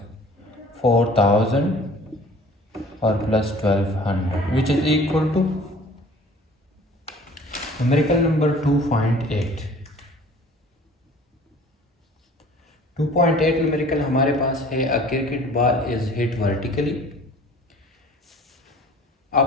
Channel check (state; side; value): normal; both; correlation 0.49